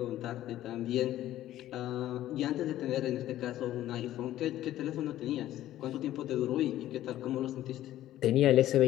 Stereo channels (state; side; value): quieter; right; 13.5 dB